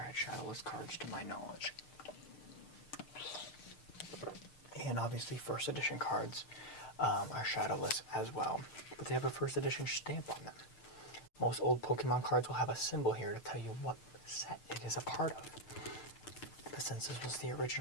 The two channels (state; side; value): late; right; 6.6 ms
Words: shadowless cards to my knowledge. And obviously first edition cards are shadowless as well, but they have a first edition stamp on them. Most old Pokemon cards will have a symbol here to tell you what set it is a part of. But since this was the